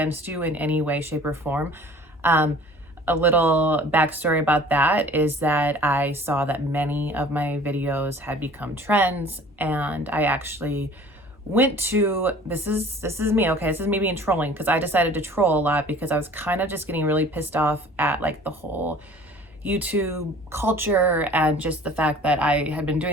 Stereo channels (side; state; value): both; normal; correlation 0.48